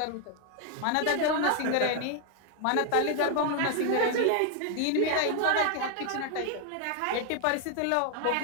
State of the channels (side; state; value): both; different; correlation 0.00